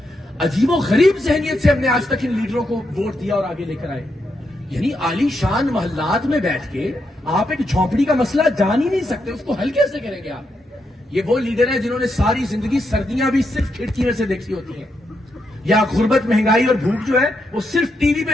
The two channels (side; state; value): both; normal; correlation 0.82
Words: عجیب و غریب ذہنیت سے ہم نے آج تک ان لیڈروں کو ووٹ دیا اور آگے لے کر آئے. یعنی عالی شان محلات میں بیٹھ کے آپ ایک جھونپڑی کا مسئلہ جان ہی نہیں سکتے، اس کو حل کیسے کریں گے آپ؟ یہ وہ لیڈر ہیں جنہوں نے ساری زندگی سردیاں بھی صرف کھڑکی میں سے دیکھی ہوتی ہیں، یا غربت، مہنگائی اور بھوک جو ہے وہ صرف ٹی وی